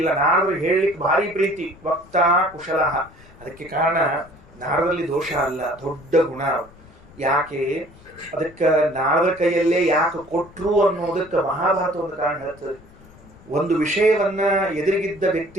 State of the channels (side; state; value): left; noise; rumble, 24 dB below the sound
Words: ನಾರದ್ರು ಹೇಳಲಿಕ್ಕೆ ಭಾರಿ ಪ್ರೀತಿ. ವಕ್ತಾ ಕುಶಲ. ಅದಕ್ಕೆ ಕಾರಣ ನಾರದಲ್ಲಿ ದೋಷ ಅಲ್ಲ, ದೊಡ್ಡ ಗುಣ. ಯಾಕೆ ಅದಕ್ಕೆ ನಾರದ ಕೈಯಲ್ಲೇ ಯಾಕೆ ಕೊಟ್ರು ಅನ್ನೋದಕ್ಕೆ ಮಹಾಭಾರತ ಒಂದು ಕಾರಣ ಹೇಳ್ತದೆ. ಒಂದು ವಿಷಯವನ್ನ ಎದುರಿಗಿದ್ದ